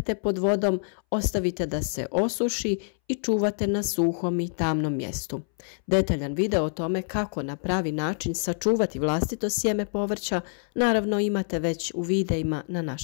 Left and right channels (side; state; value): right; silent; 61 dB below the other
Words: pod vodom, ostavite da se osuši i čuvate na suhom i tamnom mjestu. Detaljan video o tome kako na pravi način sačuvati vlastito sjeme povrća naravno imate već u videima na